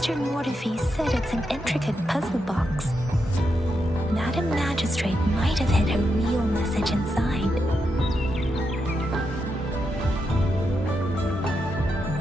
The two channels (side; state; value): both; normal; correlation 0.84